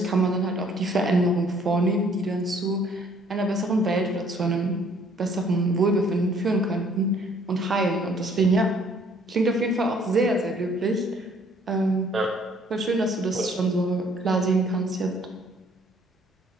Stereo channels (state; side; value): normal; both; correlation 0.61